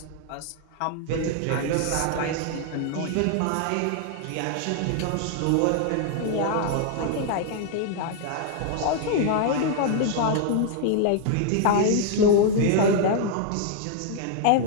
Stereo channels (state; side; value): different; both; correlation 0.00